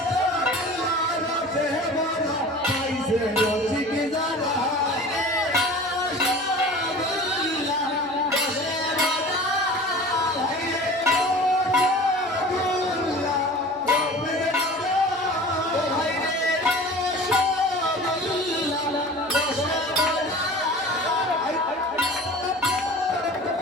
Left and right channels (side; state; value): right; noise; hum, 27 dB below the sound